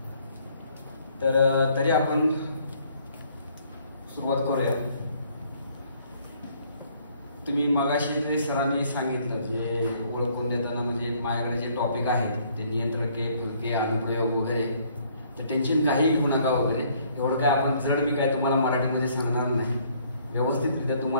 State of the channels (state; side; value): inverted; both; correlation -0.63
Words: तर तरी आपण सुरुवात करूया. तुम्ही मगाशी जे सरांनी सांगितलं जे ओळखून देताना म्हणजे माझ्याकडे जे टॉपिक आहेत ते नियंत्रके फलके अनुप्रयोग वगैरे तर टेन्शन काही घेऊ नका वगैरे. एवढं काय आपण जड मी काय तुम्हाला मराठीमध्ये सांगणार नाही. व्यवस्थितरित्या